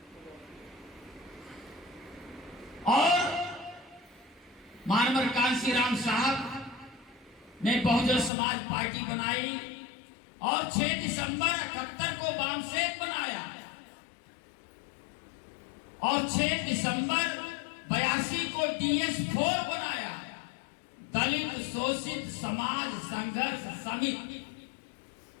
और मानवर कांशीराम साहब ने बहुजन समाज पार्टी बनाई और 6 दिसंबर 78 को वामसेक बनाया और 6 दिसंबर 82 को DS4 बनाया, दलित शोषित समाज संघर्ष समिति।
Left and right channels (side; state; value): right; drops out; at 8.3 s